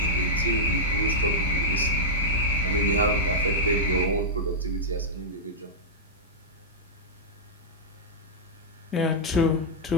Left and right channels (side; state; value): both; normal; correlation -0.07